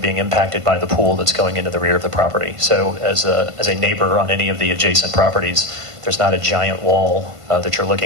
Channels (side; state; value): left; late; 1.5 ms